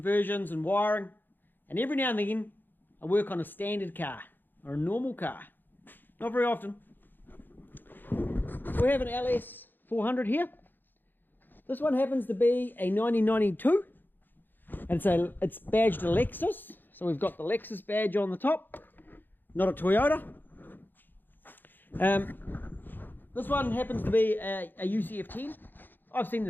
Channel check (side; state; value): right; late; 0.092 ms